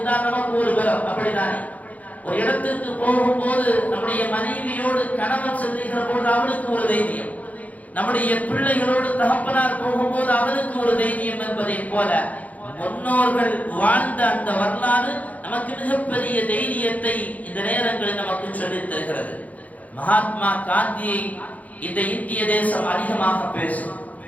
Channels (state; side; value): late; right; 0.074 ms